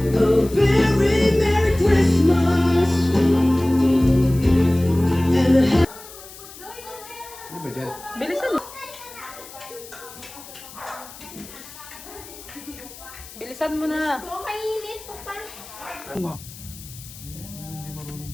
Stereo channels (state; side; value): noise; left; hiss, 17 dB below the sound